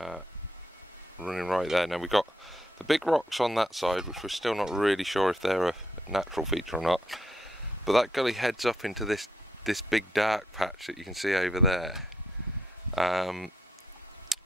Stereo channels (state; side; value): normal; both; correlation 0.77